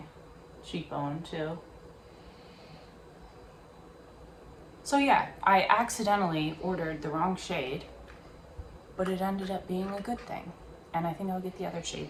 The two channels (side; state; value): both; identical; correlation 1.00